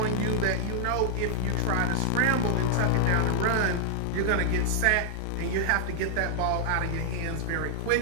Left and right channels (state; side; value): different; both; correlation -0.01